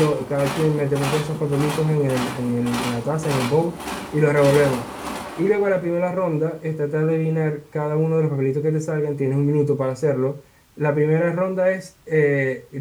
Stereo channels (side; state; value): both; identical; correlation 1.00